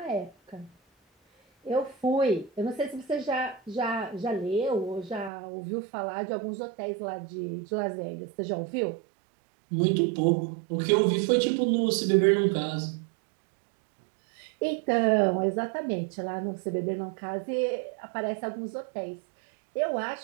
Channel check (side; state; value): left; drops out; at 5.3 s